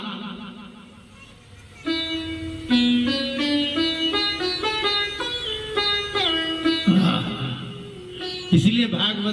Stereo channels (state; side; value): identical; both; correlation 1.00